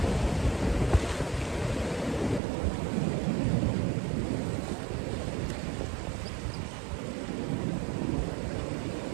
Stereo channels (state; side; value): drops out; left; at 2.4 s